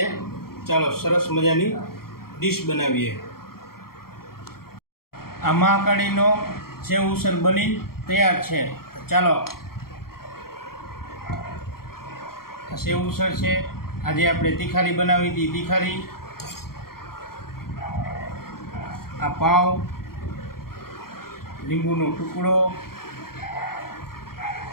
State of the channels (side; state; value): right; late; 0.93 ms